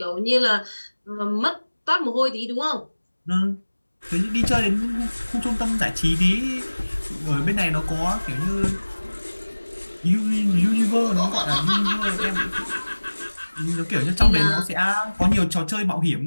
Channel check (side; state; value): both; inverted; correlation -1.00